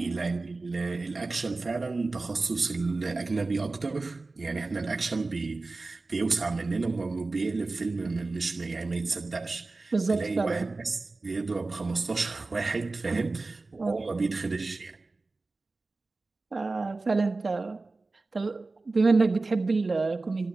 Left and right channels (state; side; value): quieter; left; 3.5 dB